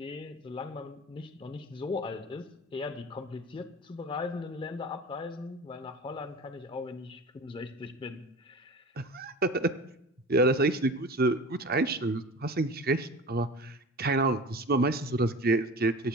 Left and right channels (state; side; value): normal; both; correlation 0.36